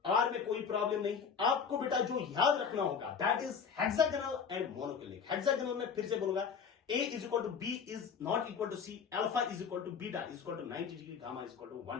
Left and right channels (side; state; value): right; quieter; 6.4 dB